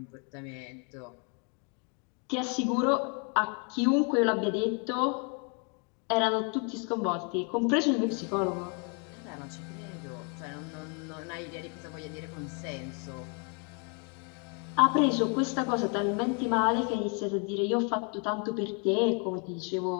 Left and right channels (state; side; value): quieter; right; 37.1 dB